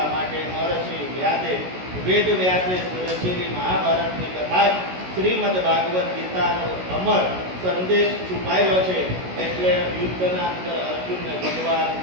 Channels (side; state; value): left; late; 16 ms